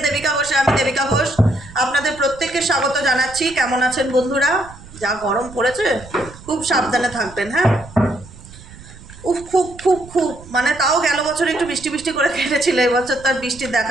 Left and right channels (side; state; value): right; noise; rumble, 19 dB below the sound